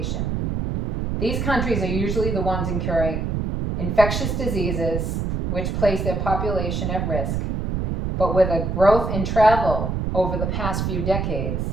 These countries are usually the ones incurring infectious diseases, which place their population at risk. But with a growth in travel over the past few decades,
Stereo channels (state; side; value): noise; right; rumble, 1 dB below the sound